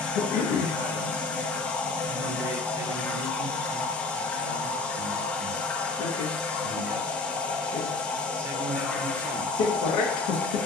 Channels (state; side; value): quieter; right; 3.5 dB